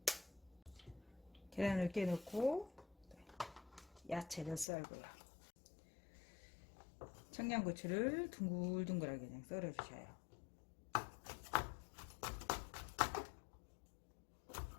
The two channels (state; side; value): drops out; right; at 4.7 s